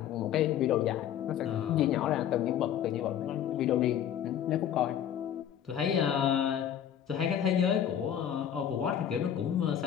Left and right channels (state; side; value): quieter; right; 9.8 dB